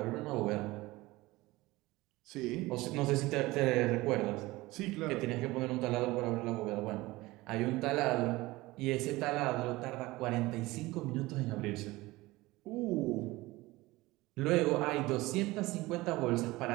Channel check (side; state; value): left; quieter; 20.0 dB